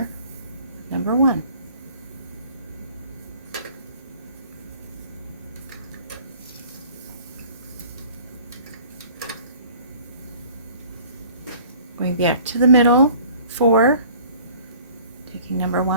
number 1. Going back to the middle, 4, taking number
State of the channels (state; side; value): inverted; both; correlation -0.51